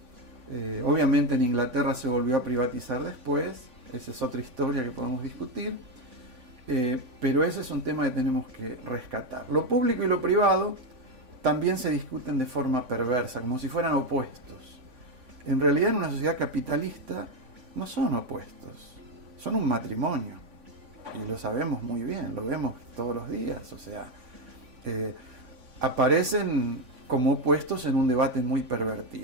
Obviamente en Inglaterra se volvió a privatizar después, esa es otra historia que podemos discutir, pero ese es un tema que tenemos que rescatar. Lo público y lo privado también se discuten de forma perversa, como si fueran opuestos. En realidad en una sociedad capitalista no son opuestos, son un matrimonio, y lo sabemos muy bien, lo vemos todos los días, o sea, aparecen como opuestos en un debate muy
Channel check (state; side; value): late; left; 3.5 ms